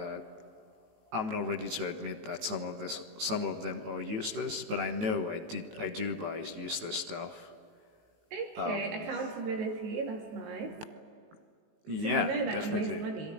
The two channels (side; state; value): left; late; 19 ms